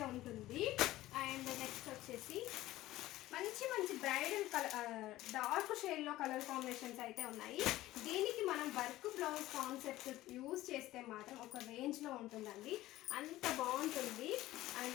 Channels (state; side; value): quieter; right; 16.1 dB